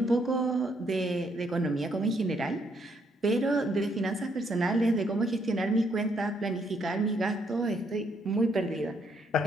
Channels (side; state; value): both; normal; correlation 0.72